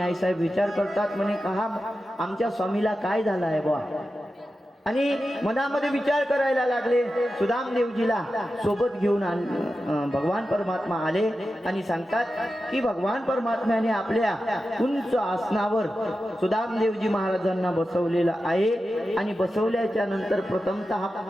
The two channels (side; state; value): both; normal; correlation 0.92